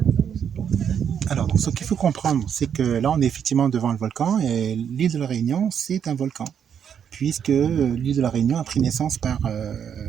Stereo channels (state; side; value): quieter; left; 8.1 dB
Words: Alors, donc, ce qu'il faut comprendre, c'est que là, on est effectivement devant le volcan et l'île de la Réunion, c'est un volcan, puisque l'île de la Réunion a pris naissance par